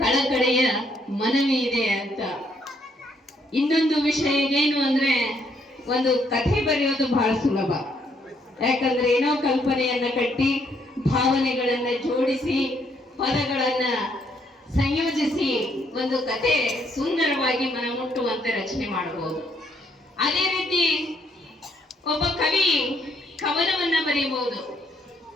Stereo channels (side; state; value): both; normal; correlation 0.71